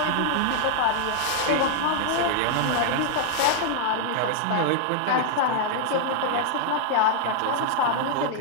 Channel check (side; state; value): both; different; correlation 0.00